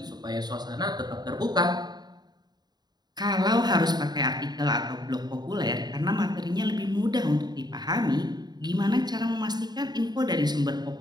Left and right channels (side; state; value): left; late; 0.20 ms